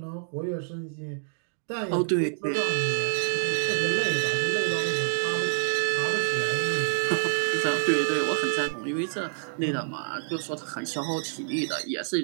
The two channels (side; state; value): left; silent; digital silence